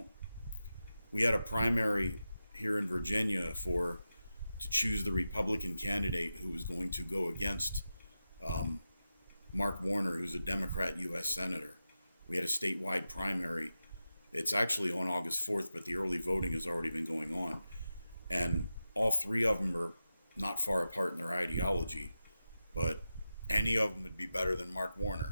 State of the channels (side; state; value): both; inverted; correlation -0.91